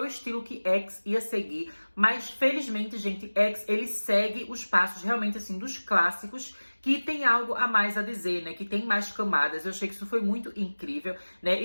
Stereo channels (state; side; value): inverted; both; correlation -1.00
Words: o estilo que X ia seguir, mas felizmente, gente, X, ele segue os passos realmente, assim, dos clássicos, que tem algo a mais a dizer, né? Que tem mais camadas. Eu achei que isso foi muito incrível, né?